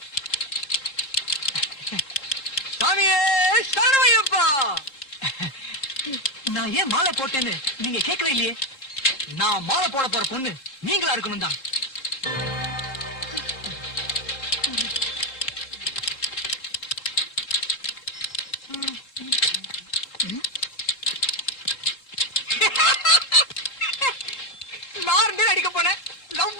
சாமியே சரணமையப்பா. நான் ஏன் மாலை போட்டேன்னு நீங்க கேட்கவே இல்லையே. நான் மாலை போட போற பொண்ணு நீங்களா இருக்கணும் தான். லார்ந்து அடிக்க போனேன்,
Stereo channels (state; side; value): late; right; 3.7 ms